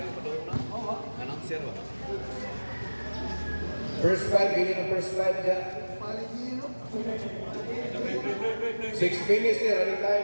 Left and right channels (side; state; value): both; inverted; correlation -1.00